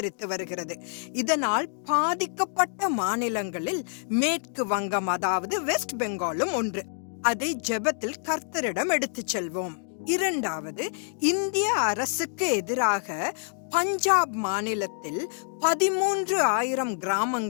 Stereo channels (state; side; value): silent; right; digital silence